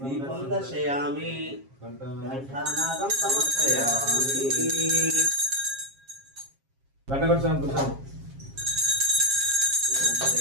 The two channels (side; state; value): left; late; 7.4 ms